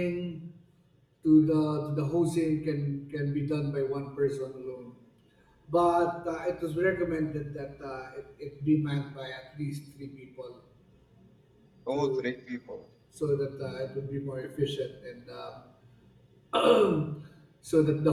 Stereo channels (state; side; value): identical; both; correlation 1.00